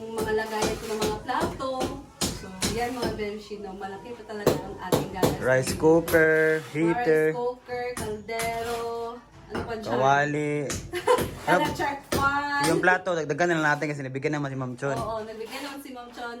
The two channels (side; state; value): both; identical; correlation 1.00